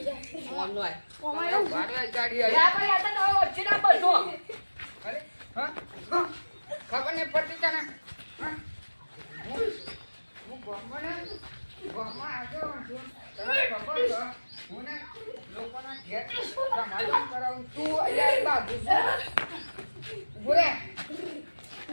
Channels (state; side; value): inverted; both; correlation -1.00